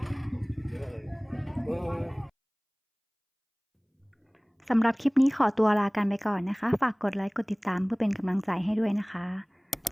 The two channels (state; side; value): identical; both; correlation 1.00